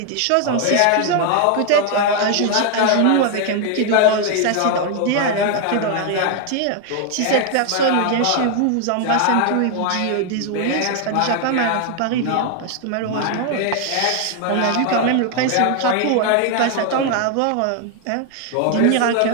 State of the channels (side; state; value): both; different; correlation 0.00